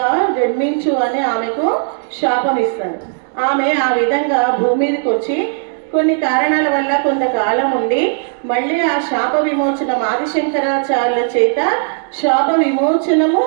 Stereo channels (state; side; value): silent; left; 64 dB below the other